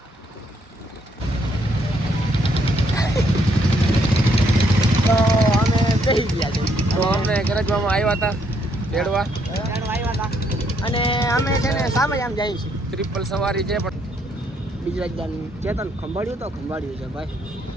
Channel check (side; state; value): both; normal; correlation 0.71